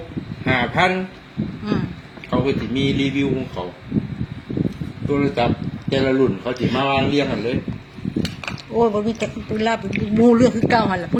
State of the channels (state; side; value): identical; both; correlation 1.00